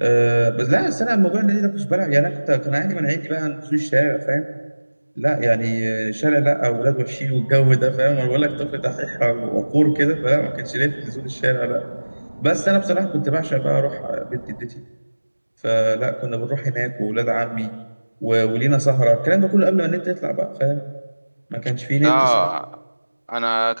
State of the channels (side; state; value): both; inverted; correlation -1.00